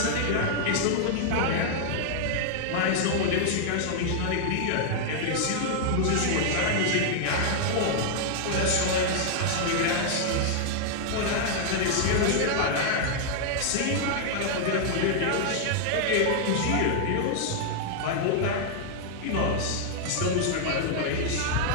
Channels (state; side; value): different; both; correlation -0.01